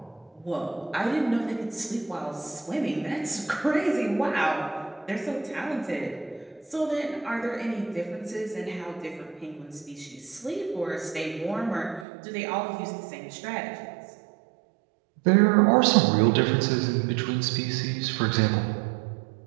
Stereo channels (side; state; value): left; drops out; at 12.1 s